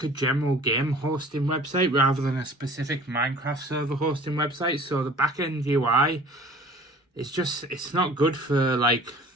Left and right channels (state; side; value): normal; both; correlation 0.47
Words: a general game hosting website rather than a specific Minecraft server hosting website. So the back-end UI it's not good for like